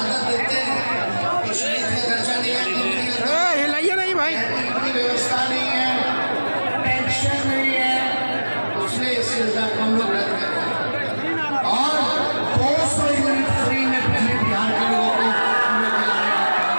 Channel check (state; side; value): inverted; both; correlation -1.00